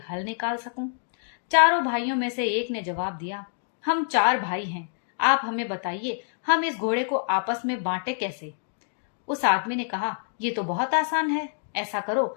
हल निकाल सकूं। चारों भाइयों में से एक ने जवाब दिया, हम चार भाई हैं, आप हमें बताइए हम इस घोड़े को आपस में बांटे कैसे। उस आदमी ने कहा, ये तो बहुत आसान है। ऐसा करो,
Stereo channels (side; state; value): right; silent; digital silence